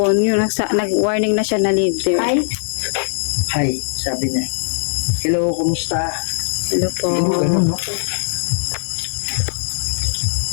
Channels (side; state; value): right; silent; digital silence